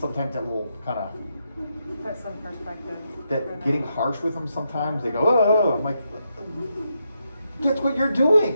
that little kind of... Put some perspective. That getting harsh with them sometimes, they go, oh, I'm like, That's what you're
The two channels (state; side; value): inverted; both; correlation -0.82